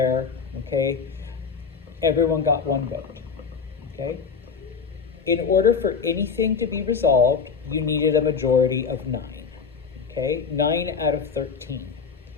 okay? Everyone got one vote, okay? In order for anything to be resolved, you needed a majority of 9, okay? 9 out of 13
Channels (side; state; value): right; quieter; 5.8 dB